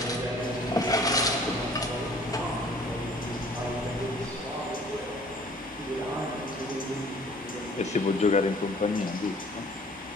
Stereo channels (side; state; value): both; normal; correlation 0.53